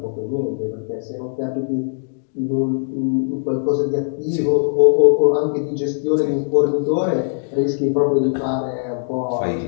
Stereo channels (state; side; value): silent; right; digital silence